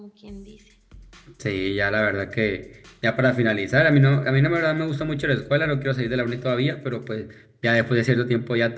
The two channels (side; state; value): both; identical; correlation 1.00